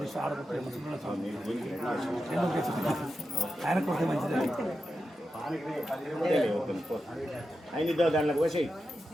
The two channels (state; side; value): normal; both; correlation 0.90